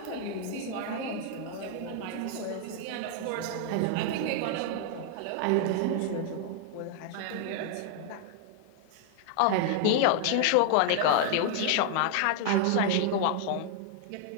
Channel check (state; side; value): different; both; correlation 0.00